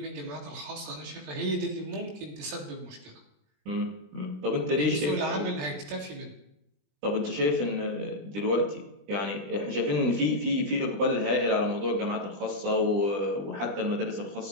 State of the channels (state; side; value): late; left; 20 ms